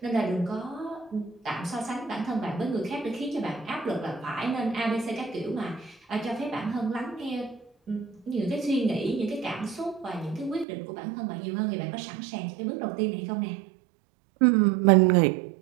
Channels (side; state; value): left; drops out; at 10.7 s